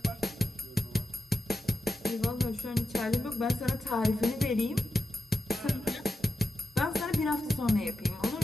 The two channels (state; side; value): normal; both; correlation 0.88